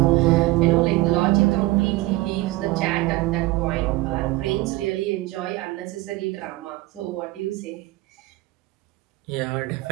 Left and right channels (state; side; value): quieter; left; 19.5 dB